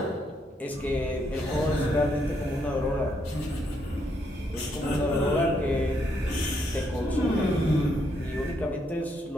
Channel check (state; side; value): normal; both; correlation 0.75